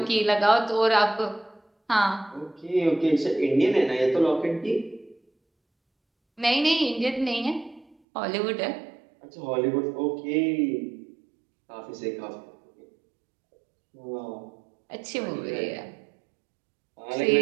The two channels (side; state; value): left; drops out; at 8.0 s